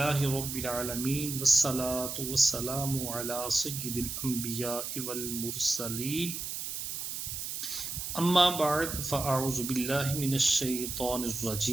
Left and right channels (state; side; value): noise; right; hiss, 5 dB below the sound